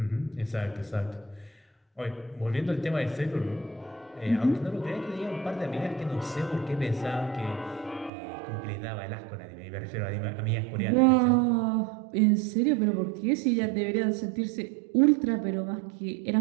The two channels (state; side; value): drops out; left; at 8.1 s